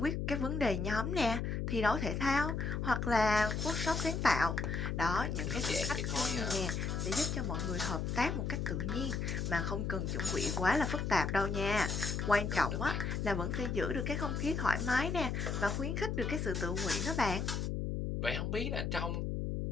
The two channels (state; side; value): noise; left; hum, 1 dB below the sound